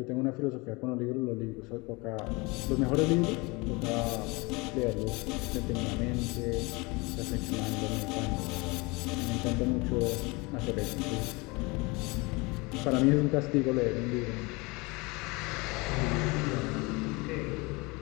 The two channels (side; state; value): right; quieter; 26.1 dB